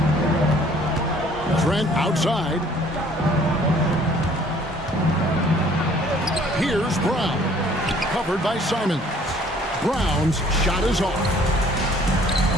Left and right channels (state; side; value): normal; both; correlation 0.57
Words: Trent outside. Here's Brown. Covered by Simons. Brown's shot is off.